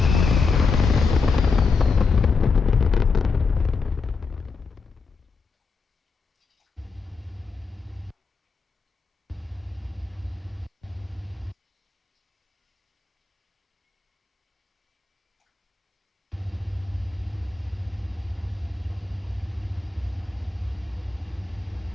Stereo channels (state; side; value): quieter; right; 4.5 dB